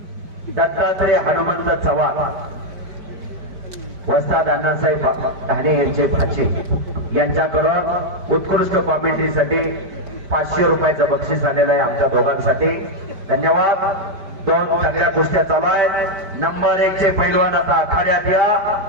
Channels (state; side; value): late; left; 5.1 ms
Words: दत्तात्रय हनुमंत चव्हाण वस्ताद अण्णासाहेब ढाणे यांचे भाचे यांच्याकडून उत्कृष्ट कॉमेंट्रीसाठी 500 रुपयाचं बक्षीस आलेलं आहे आमच्या दोघांसाठी. धन्यवाद. 2 सगळ्या कुस्त्या चालू आहेत. नंबर 1 चे पैलवान आता आखाड्यात या.